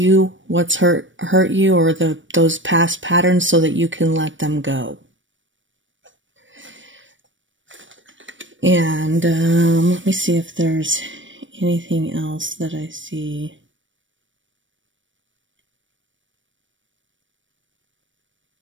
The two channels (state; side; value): late; left; 0.56 ms